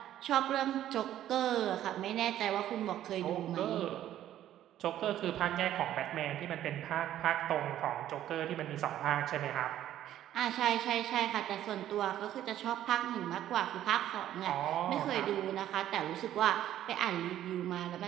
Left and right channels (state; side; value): quieter; left; 12.1 dB